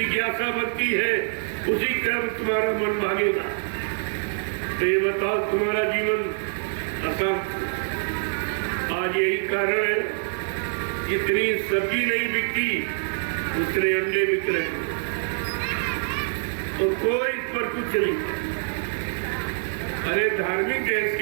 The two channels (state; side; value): silent; left; digital silence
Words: बनती है, उसी कर्म तुम्हारा मन भागेगा। तो ये बताओ तुम्हारा जीवन अशांत। आज यही कारण है जितनी सब्जी नहीं बिकती उतने अंडे बिक रहे हैं, तो कोई इस पर कुछ नहीं। अरे धार्मिक देश